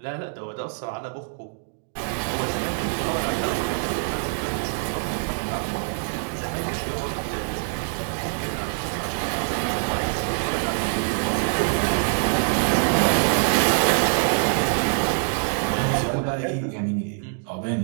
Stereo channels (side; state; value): left; silent; digital silence